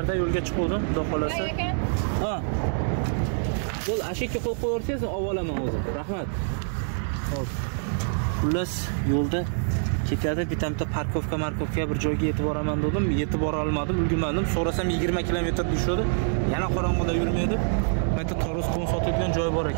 yo'lga chiqdim, xudo xolasa. Ha. Bo'l, ashakka qo'yib qo'yarsiz, avvalaman o'zim. Rahmat. Xo'p. Xullas yo'lda ketyapti, bitamda parkovka bir joyga yetib boraman dedim, yetib bora olmadim, ulgurmadim. So'rasam 20 kilometr tushadi. Yana qorong'ida yurmaydi. Mayta Toros qon sotadigan joy bor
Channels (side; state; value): left; silent; digital silence